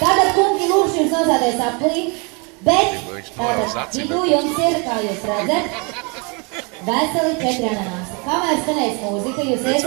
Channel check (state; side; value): quieter; left; 32.5 dB